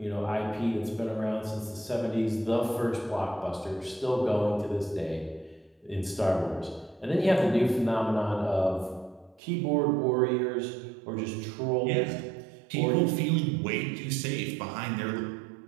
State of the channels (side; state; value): left; drops out; at 9.4 s